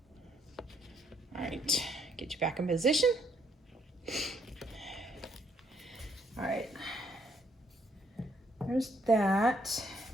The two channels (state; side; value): normal; both; correlation 0.70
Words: All right, get you back in position. All right. There's that.